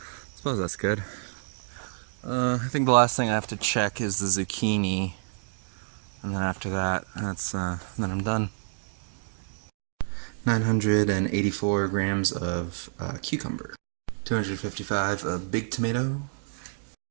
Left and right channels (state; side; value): silent; left; digital silence